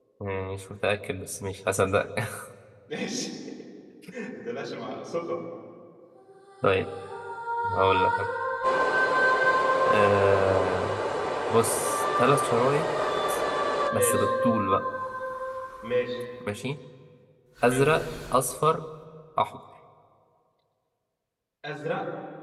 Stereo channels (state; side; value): identical; both; correlation 1.00